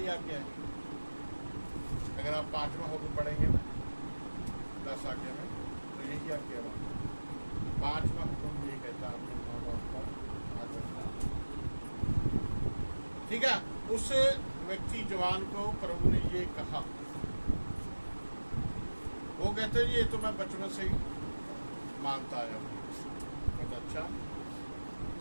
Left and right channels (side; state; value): both; inverted; correlation -1.00